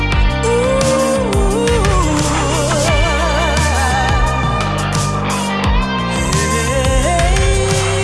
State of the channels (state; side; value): identical; both; correlation 1.00